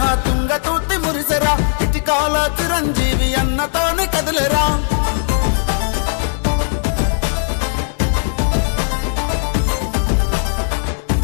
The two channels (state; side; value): silent; right; 65 dB below the other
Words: తుంగ తూర్తి మురిసెరా ఇటికాల చిరంజీవి అన్నతోని కదిలేరా